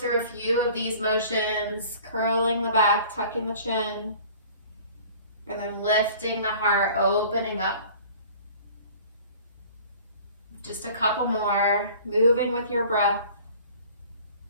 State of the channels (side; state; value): both; inverted; correlation -0.47